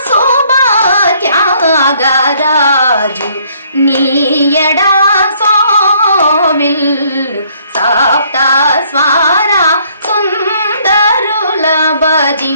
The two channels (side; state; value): both; inverted; correlation -0.64